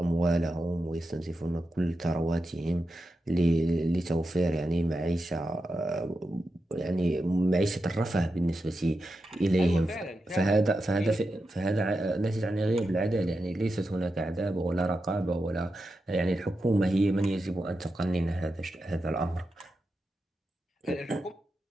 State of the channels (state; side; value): normal; both; correlation 0.89